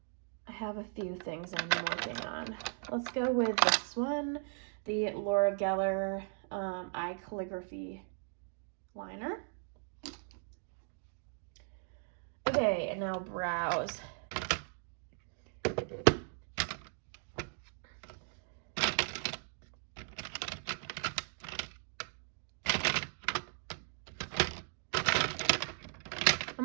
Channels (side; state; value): left; silent; 53 dB below the other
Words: I have a few things I'm working on. Let's go with this one, the Laura Geller Eye Calligraphy Liner. Okay, and now brows.